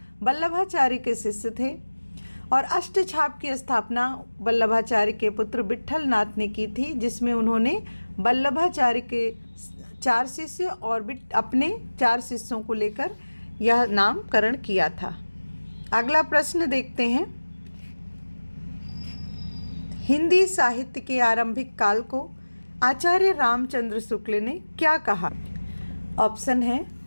वल्लभाचार्य के शिष्य थे, और अष्टछाप की स्थापना वल्लभाचार्य के पुत्र विट्ठल नाथ ने की थी, जिसमें उन्होंने वल्लभाचार्य के 4 शिष्य और अपने 4 शिष्यों को लेकर यह नामकरण किया था। अगला प्रश्न देखते हैं। हिंदी साहित्य के आरंभिक काल को आचार्य रामचंद्र शुक्ल ने क्या कहा? ऑप्शन है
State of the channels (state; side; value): inverted; both; correlation -1.00